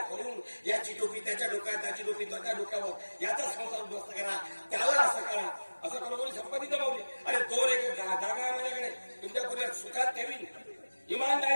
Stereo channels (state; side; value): inverted; both; correlation -1.00